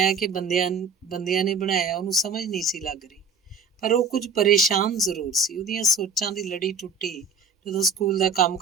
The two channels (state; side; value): quieter; left; 4.8 dB